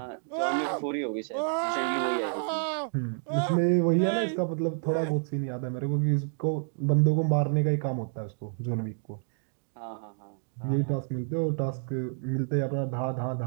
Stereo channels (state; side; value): silent; left; digital silence